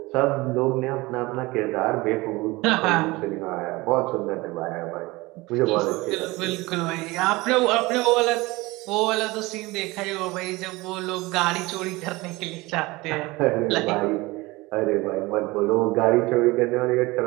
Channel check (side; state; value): left; quieter; 21.9 dB